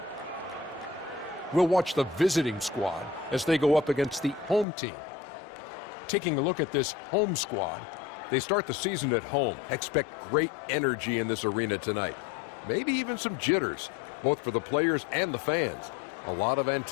We'll watch the visiting squad as they go up against the home team. Taking a look at this home squad, they start the season at home. Expect great energy in this arena tonight. Maybe even some jitters, both for the players and the fans. A lot of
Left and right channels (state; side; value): drops out; right; at 4.7 s